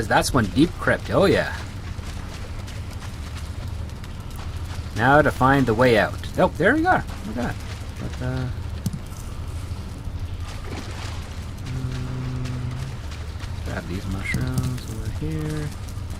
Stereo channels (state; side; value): identical; both; correlation 1.00